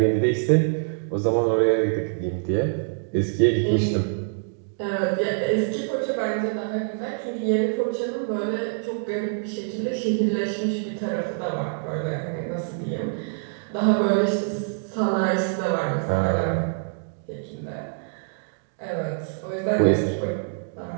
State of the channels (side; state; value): left; silent; digital silence